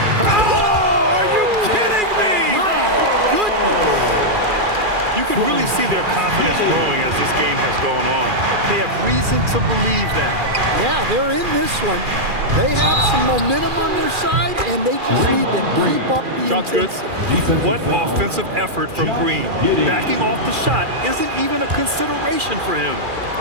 Oh, are you kidding me? My goodness! You can really see their confidence growing as this game has gone on. They have reason to believe that. Yeah, they're in this one. They have some momentum on their side, and they just need to keep up the Shot's good. intensity. What offensive effort from Green. Backing off the shot isn't even a consideration for him.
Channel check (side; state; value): left; late; 2.4 ms